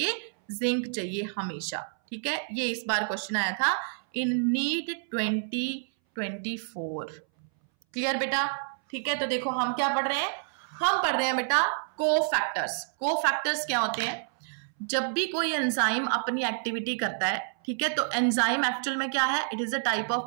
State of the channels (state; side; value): silent; left; 59 dB below the other